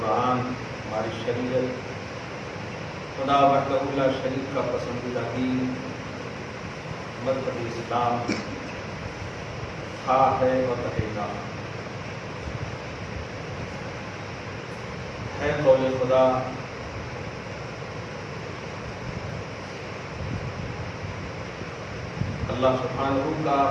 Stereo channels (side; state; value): both; identical; correlation 1.00